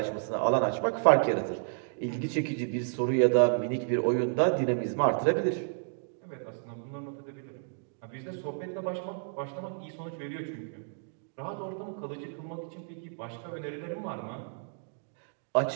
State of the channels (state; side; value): silent; left; digital silence